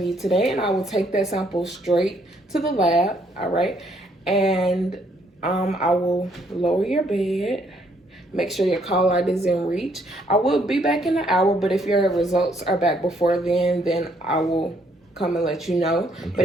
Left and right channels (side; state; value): both; normal; correlation 0.69